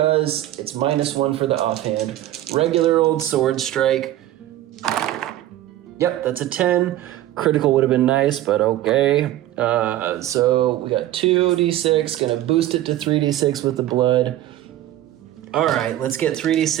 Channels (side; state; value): left; quieter; 13.8 dB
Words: it's -1 for the offhand. Regular old sword strike. Yep, that's a 10. Critical would have been nice, but okay. So we got 2d6, gonna boost it to 3d6 with the blood. All right, let's get